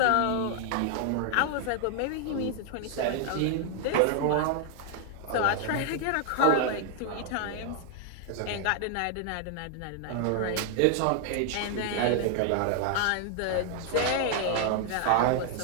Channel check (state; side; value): different; both; correlation 0.00